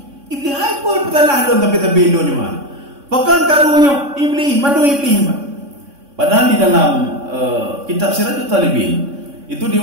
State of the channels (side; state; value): left; late; 3.6 ms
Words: Iblis hai pun betullah don tapi do ni mah. Bakal karunya iblis, mandu iblis mah. Padahal di dalam kitab Siratul Talibin itu